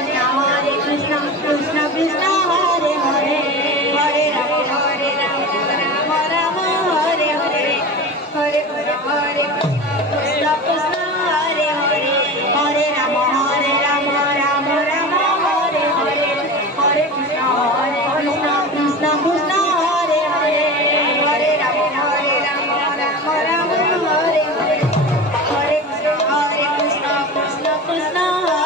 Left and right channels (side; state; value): both; normal; correlation 0.30